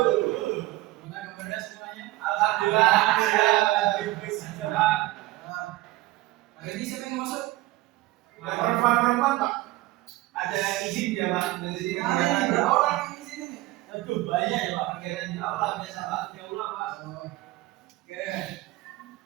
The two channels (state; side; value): quieter; left; 18.4 dB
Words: Gimana kabarnya semuanya? Alhamdulillah. Hari ini siapa yang masuk? Perempuan Pak. Ada izin ya Pak? Ada berapa orang yang di sini nih? Aduh banyak ya Pak. Kegiatan di aula biasa Pak. Di aula Pak. Oke.